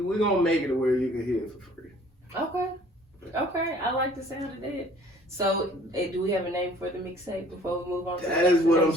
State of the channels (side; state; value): both; normal; correlation 0.54